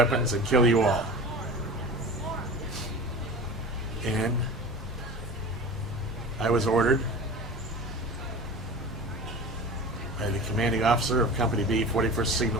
and kill you all. And I was ordered by the commanding officer of Company B, 41st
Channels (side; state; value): both; normal; correlation 0.35